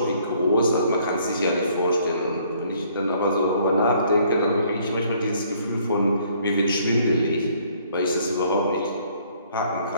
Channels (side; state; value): both; inverted; correlation -0.63